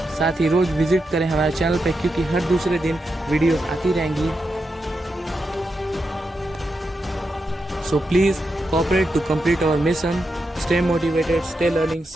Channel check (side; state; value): both; normal; correlation 0.86